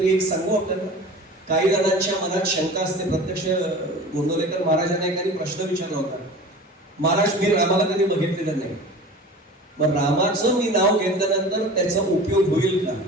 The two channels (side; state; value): both; normal; correlation 0.38